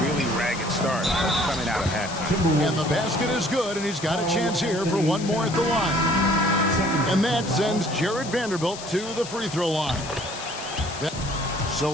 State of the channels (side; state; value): left; noise; hiss, 11 dB below the sound